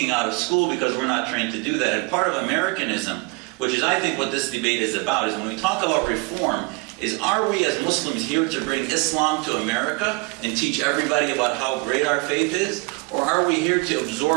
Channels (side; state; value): left; quieter; 27.4 dB